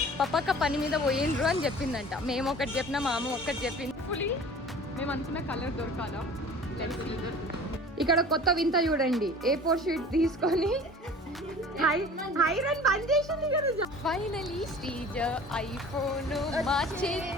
పప్పక్క పని మీద పోయిండ్రు అని చెప్పిందంట మేము ఒకటి చెప్పినా మా అమ్మ ఒకటి చెప్పింది ఫుల్లీ మేము అనుకున్న కలర్ దొరకాలా ఇక్కడ కొత్త వింత చూడండి A4 షీట్ తీసుకొని హైరన్ బంద్ చేసింది కదా ఫైనలీ శ్రీజ ఐఫోన్ మా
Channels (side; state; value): both; normal; correlation 0.44